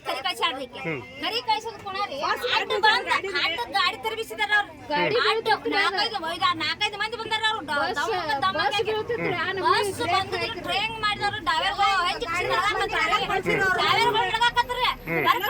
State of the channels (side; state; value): both; identical; correlation 1.00